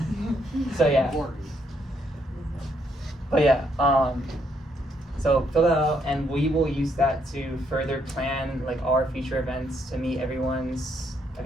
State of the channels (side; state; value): both; normal; correlation 0.74